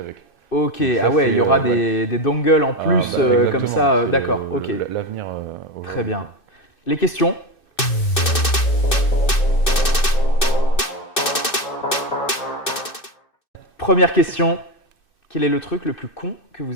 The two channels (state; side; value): late; right; 2.6 ms